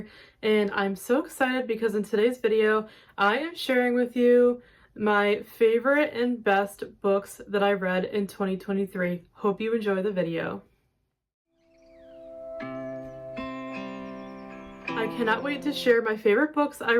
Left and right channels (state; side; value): identical; both; correlation 1.00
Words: and I'm so excited because in today's video I am sharing with you my favorite and best books that I read in 2023. Hope you enjoy the video. I cannot wait to share my favorite books I